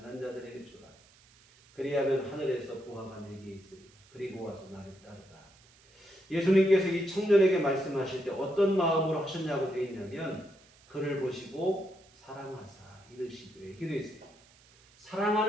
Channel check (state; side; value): noise; right; hiss, 28 dB below the sound